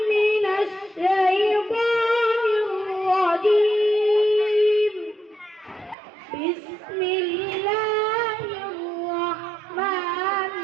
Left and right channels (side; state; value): left; drops out; at 6.0 s